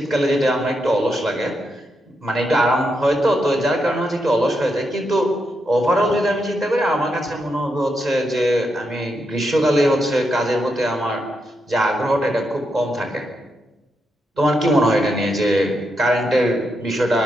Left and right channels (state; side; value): normal; both; correlation 0.83